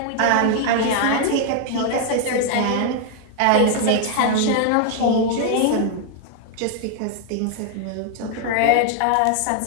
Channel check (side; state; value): both; different; correlation 0.00